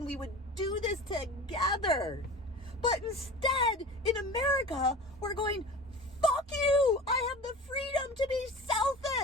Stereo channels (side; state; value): both; normal; correlation 0.36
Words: we would do this together. But instead, in America, we're going, fuck you! I have the freedom to be